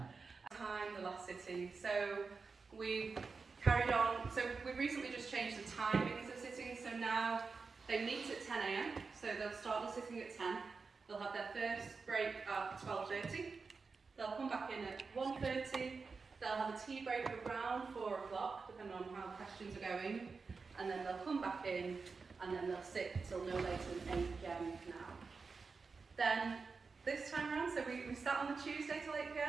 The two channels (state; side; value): quieter; left; 4.6 dB